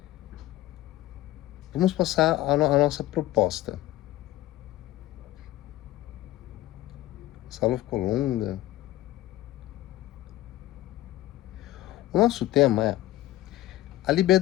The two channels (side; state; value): right; quieter; 15.6 dB